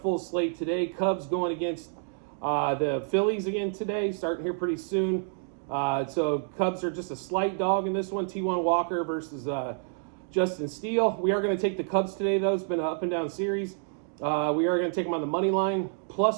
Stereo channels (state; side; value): silent; left; digital silence